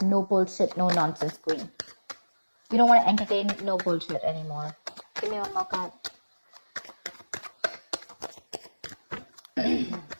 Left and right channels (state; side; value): inverted; both; correlation -1.00